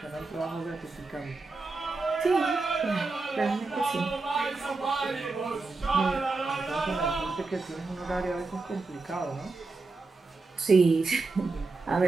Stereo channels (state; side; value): quieter; left; 3.7 dB